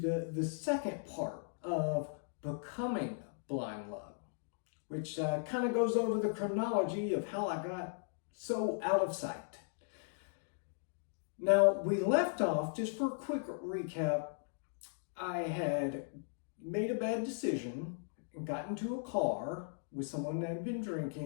second part of becoming Blind Luck, which kind of goes over the chronology of how I got so out of sight. Now, we left off, just for a quick recap, I had made a bad decision and got into a car with someone that had been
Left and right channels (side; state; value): right; silent; digital silence